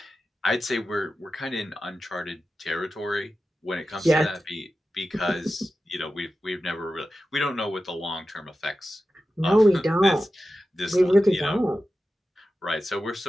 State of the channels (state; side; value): normal; both; correlation 0.93